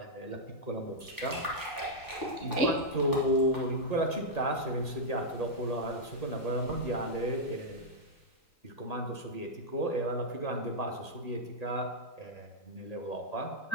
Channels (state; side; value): late; right; 3.9 ms